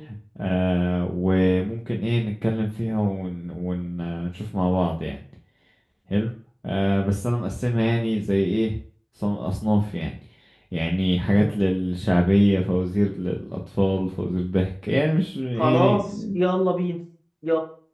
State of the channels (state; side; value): identical; both; correlation 1.00